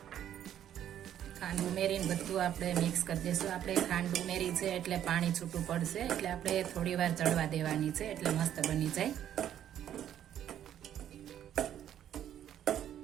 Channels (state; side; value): quieter; left; 10.6 dB